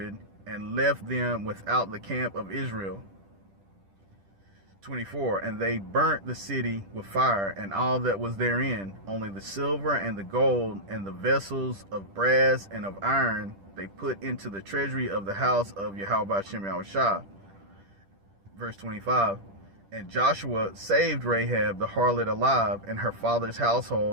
and left them without the camp of Israel. 24, and they burnt the city with fire and all that was therein, only the silver and the gold and the vessels of brass and of iron they put into the treasury of the house of Yahweh Shem Yahushua. Verse 25, and Joshua saved Rahab the harlot alive, and her father's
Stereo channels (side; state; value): left; late; 10 ms